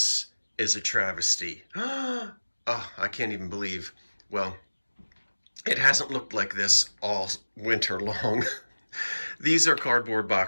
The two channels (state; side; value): inverted; both; correlation -1.00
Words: is a travesty. Oh, I can't even believe. Well, it hasn't looked like this all winter long. These are cardboard